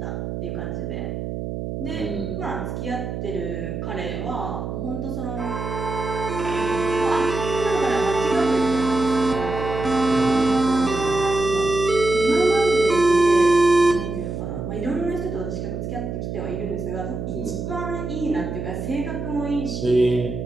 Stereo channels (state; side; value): noise; right; hum, 5 dB below the sound